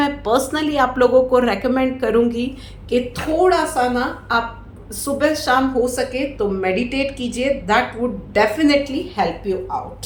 पर्सनली आप लोगों को रेकमेंड करूँगी कि थोड़ा सा ना आप सुबह शाम हो सके तो मेडिटेट कीजिए। That would definitely help you out.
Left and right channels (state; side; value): identical; both; correlation 1.00